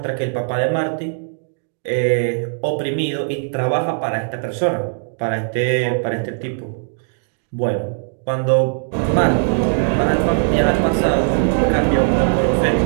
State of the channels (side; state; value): left; silent; digital silence